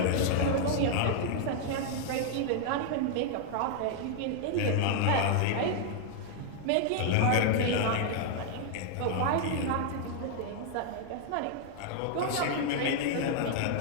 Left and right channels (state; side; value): different; both; correlation 0.00